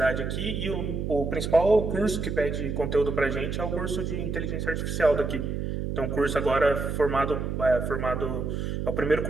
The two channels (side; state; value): right; noise; hum, 3 dB below the sound